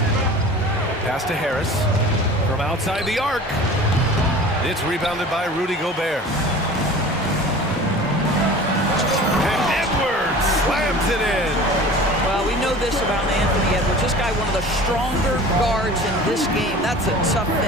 Pass to Harris. From outside the arc. It's rebounded by Rudy Gobert. And Edwards slams it in. Well, we know this about Anthony Edwards. This guy, one of the stronger guards in this game. That's a tough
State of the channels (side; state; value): both; normal; correlation 0.41